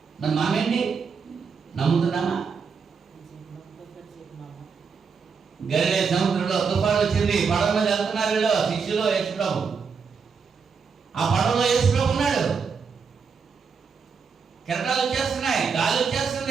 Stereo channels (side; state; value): left; quieter; 5.7 dB